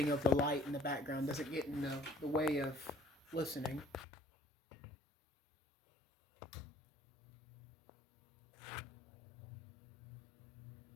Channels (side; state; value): right; drops out; at 4.0 s